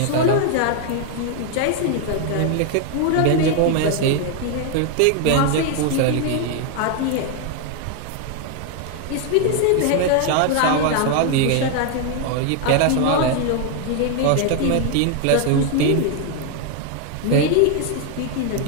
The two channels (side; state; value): both; different; correlation 0.00